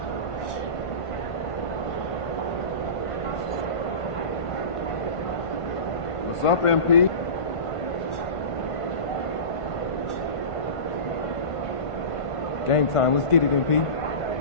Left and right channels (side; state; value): right; late; 1.5 ms